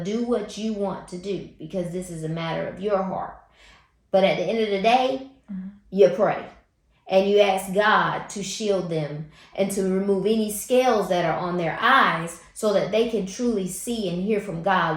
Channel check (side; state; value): both; identical; correlation 1.00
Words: do what you want to do, because this is a matter of your heart. But at the end of the day, you pray. And you ask God to shield them and to remove any scales that are on their eyes, so that they can truly see and hear from